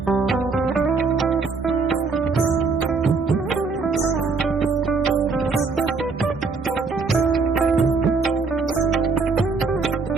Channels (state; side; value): quieter; left; 4.4 dB